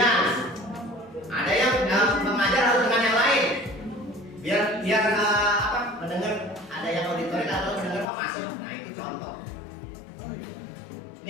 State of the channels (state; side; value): drops out; right; at 8.1 s